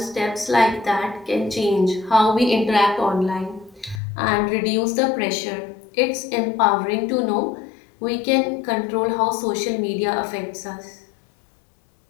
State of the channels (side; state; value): right; drops out; at 4.0 s